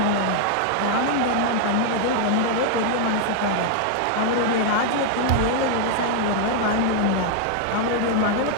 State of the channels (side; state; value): both; different; correlation 0.00